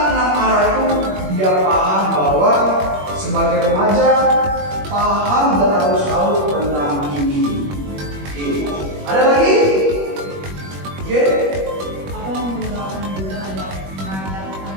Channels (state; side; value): late; left; 21 ms